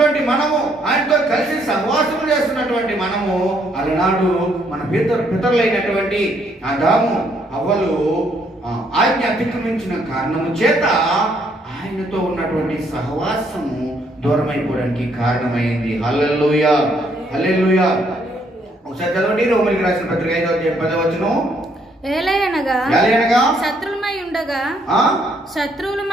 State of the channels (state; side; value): normal; both; correlation 0.70